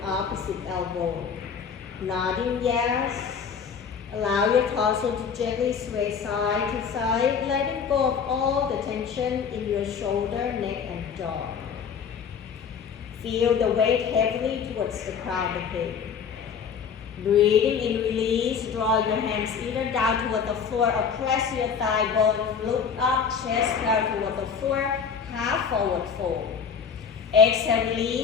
opposite elbow. Nodding yes. Allow your torso to gently sway side to side, letting go of all the tension in your shoulder, neck, and jaw. Feel the weight heavily towards the crown of the head. Breathing in, release, draw your hands either down toward the floor or press your thigh bone, look up, chest down toward the floor, half forward fold. Exhale,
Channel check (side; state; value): right; quieter; 6.6 dB